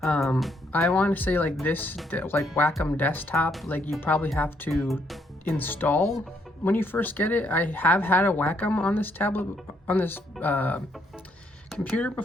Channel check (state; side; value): normal; both; correlation 0.72